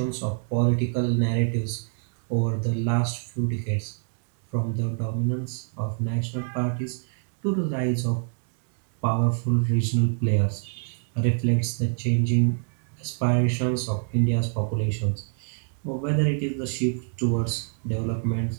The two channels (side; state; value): left; silent; digital silence